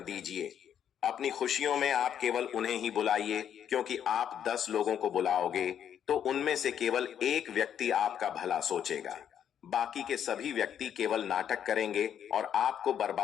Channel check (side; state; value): right; quieter; 9.2 dB